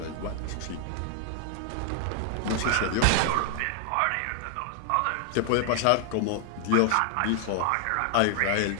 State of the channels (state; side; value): different; both; correlation 0.00